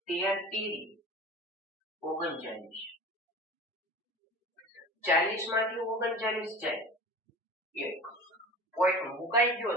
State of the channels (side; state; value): both; normal; correlation 0.37